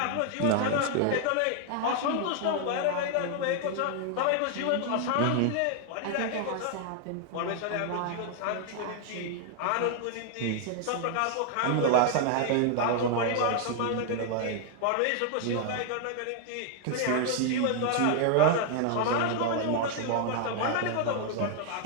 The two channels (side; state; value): both; different; correlation 0.00